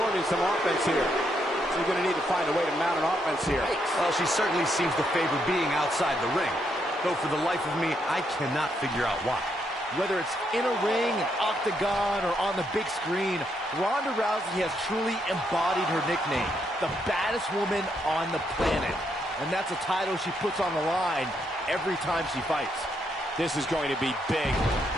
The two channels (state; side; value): normal; both; correlation 0.77